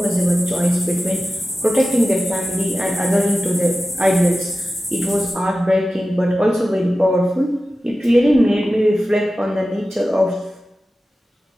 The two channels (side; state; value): both; normal; correlation 0.94